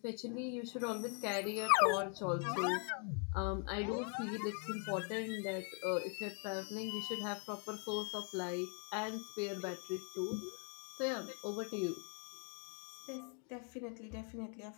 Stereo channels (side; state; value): right; quieter; 39.2 dB